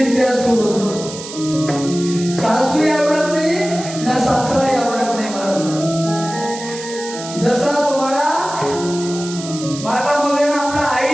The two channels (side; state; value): right; noise; hiss, 11 dB below the sound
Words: सोडून सासूही आवडत नाही ना सासराही आवडत नाही मला. जसा तुम्हाला माता मावलेना